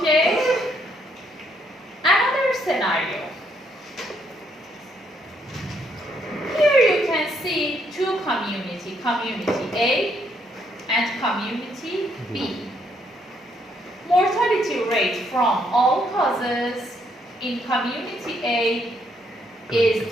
Another scenario. Here you can see two community, community A and community B. Mortality rate from all causes in community A is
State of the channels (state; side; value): normal; both; correlation 0.72